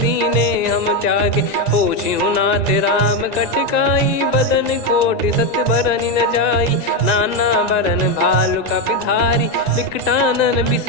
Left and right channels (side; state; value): right; late; 1.9 ms